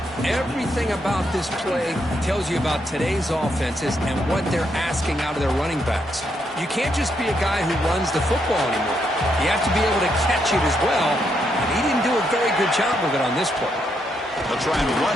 Everything about this play tells you about today's offenses and what they're asking out of their running backs. You can't just be a guy who runs the football anymore. You have to be able to catch it as well, and he didn't do a very good job of it on this play. They'll try and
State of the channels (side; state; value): both; normal; correlation 0.78